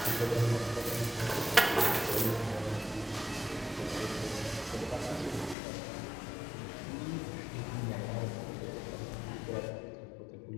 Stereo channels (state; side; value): drops out; right; at 5.6 s